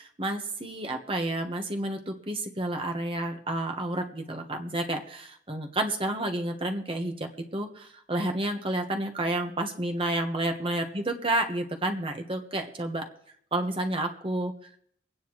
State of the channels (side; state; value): both; normal; correlation 0.48